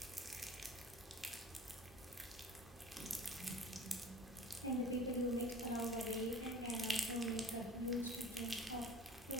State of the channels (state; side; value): normal; both; correlation 0.42